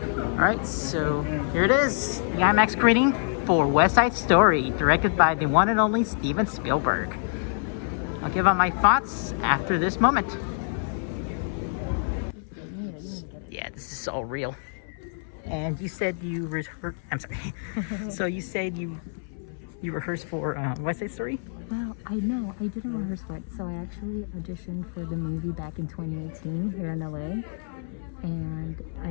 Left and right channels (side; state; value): right; silent; 60 dB below the other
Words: so here it is. The IMAX screening for West Side Story, directed by the one and only Steven Spielberg. I'll give out my thoughts after this moment. Yeah, this is all real. And you said you rehearsed... I'm sorry. So you said you rehearsed for West Side Story? Well, I know, I didn't rehearse for it. So I actually auditioned for the movie back in 2018 here in LA. And I